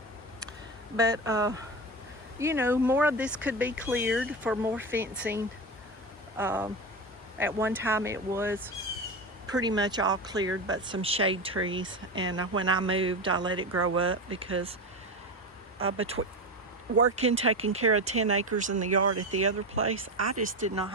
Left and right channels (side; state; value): both; normal; correlation 0.22